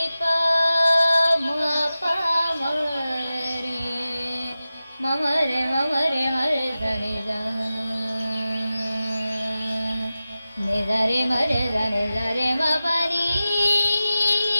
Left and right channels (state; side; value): inverted; both; correlation -0.94